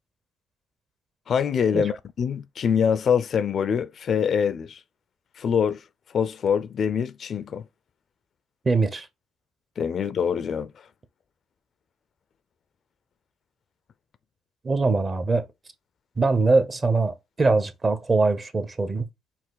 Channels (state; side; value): normal; both; correlation 0.80